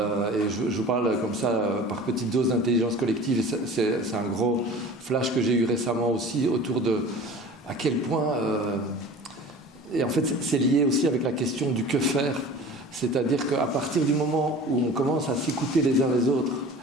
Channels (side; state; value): both; normal; correlation 0.40